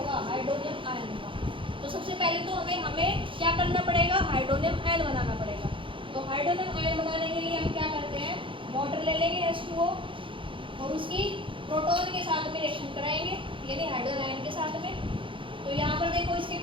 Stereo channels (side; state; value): left; late; 0.25 ms